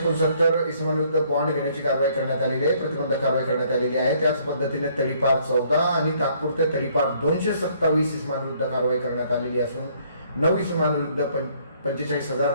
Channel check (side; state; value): both; inverted; correlation -0.64